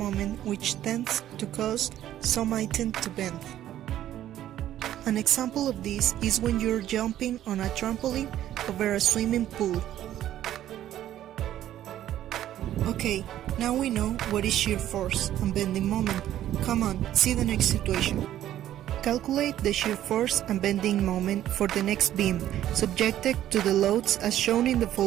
which tends to cause some item to bend. An example of this is when you're jumping on a trampoline over a swimming pool. Okay, now we know what is shear force and bending moment. Come on, see the next situation. Calculate the shear force and bending moment for the next beam, subjected to the loads as shown in the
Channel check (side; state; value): left; quieter; 12.3 dB